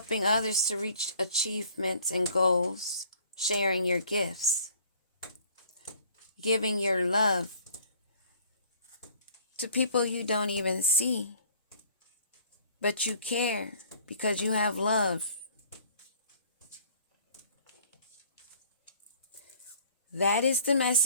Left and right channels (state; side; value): inverted; both; correlation -0.54